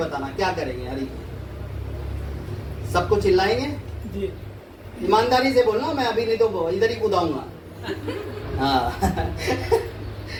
क्या करेंगे। हरी सबको चिल्लाएंगे जी, ईमानदारी से बोलना, मैं अभी नहीं तो इधर ही कूदाऊंगा। हाँ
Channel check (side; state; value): both; identical; correlation 1.00